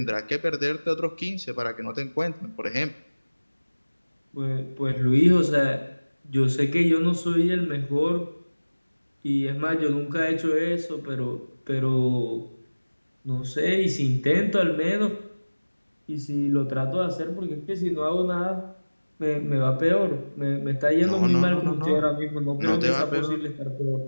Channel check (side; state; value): both; inverted; correlation -1.00